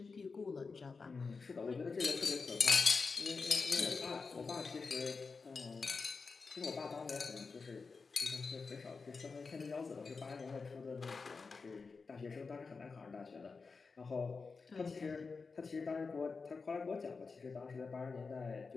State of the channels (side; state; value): right; quieter; 4.6 dB